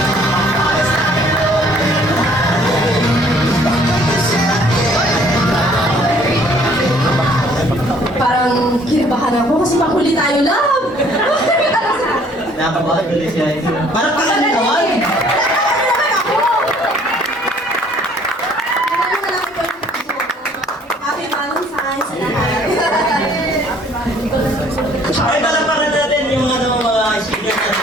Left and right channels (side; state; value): both; normal; correlation 0.59